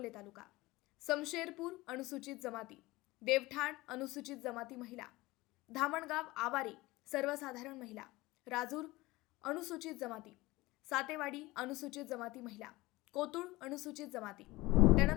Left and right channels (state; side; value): quieter; right; 20.1 dB